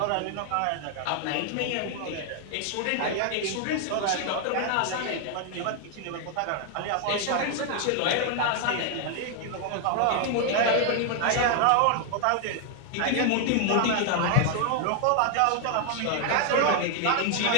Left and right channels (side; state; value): both; different; correlation 0.00